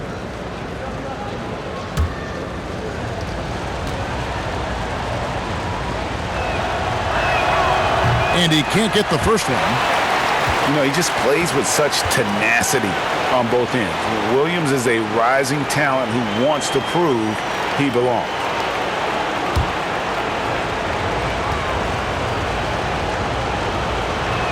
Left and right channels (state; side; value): identical; both; correlation 1.00